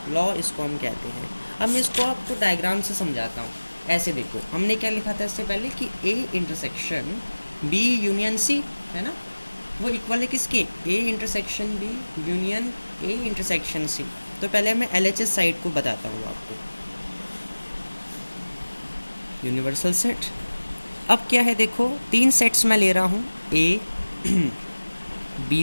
लॉ इसको हम कहते हैं। अब मैं इसको आपको डायग्राम से समझाता हूँ। ऐसे देखो, हमने क्या लिखा था इससे पहले कि A intersection B union C है ना, वो इक्वल है किसके, A intersection B union A intersection C. तो पहले मैं LHS साइड को बताता हूँ आपको, यूनिवर्सल सेट। अब क्या है देखो, 3 सेट्स मैं ले रहा हूँ, ए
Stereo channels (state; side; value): inverted; both; correlation -1.00